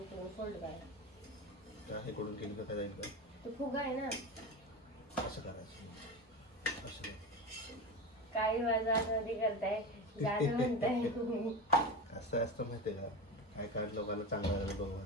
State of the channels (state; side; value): normal; both; correlation 0.23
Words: इकडून फोल्ड करा. त्या हे कडून केली का काय जाईल का? तो फुगा आहे ना. असं करायचं. असं कर. काय माझं आतमध्ये करताय जाणं म्हणताय. असं असतं माहितीये का? काय काढ लोकांना चांगलं झालं बघा.